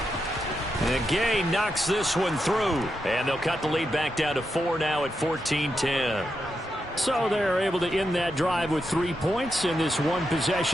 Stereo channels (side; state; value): both; normal; correlation 0.85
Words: And Gay knocks this one through, and they'll cut the lead back down to 4 now at 14-10. So they're able to end that drive with 3 points in this